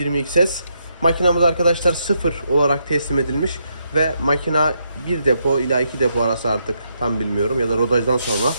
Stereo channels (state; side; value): inverted; both; correlation -0.79